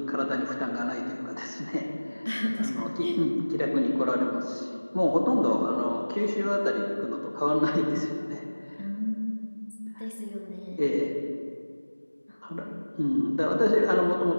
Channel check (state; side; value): inverted; both; correlation -1.00